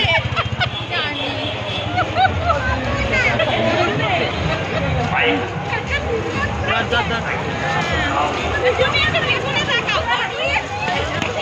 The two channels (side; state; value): both; identical; correlation 1.00